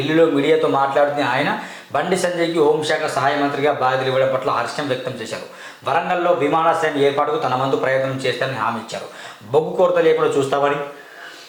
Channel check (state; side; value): identical; both; correlation 1.00